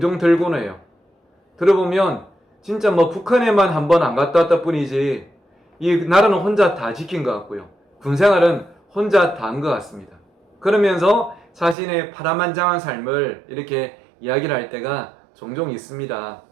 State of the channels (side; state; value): left; drops out; at 11.8 s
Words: 들곤 해요. 들어보면 진짜 북한에만 한 번 안 갔다 왔다 뿐이지 이 나라는 혼자 다 지킨 것 같고요. 군생활은 혼자 다 한 것 같습니다. 그러면서 자신의 파란만장한 삶을 이렇게 이야기를 할 때가 종종 있습니다.